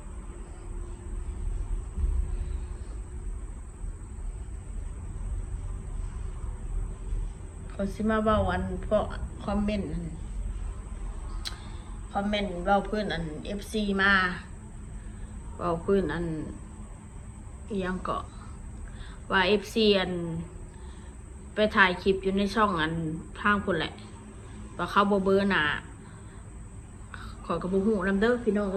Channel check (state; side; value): identical; both; correlation 1.00